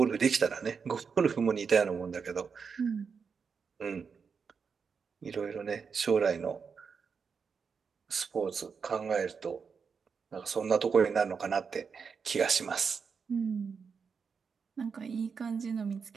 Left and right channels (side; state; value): left; quieter; 5.8 dB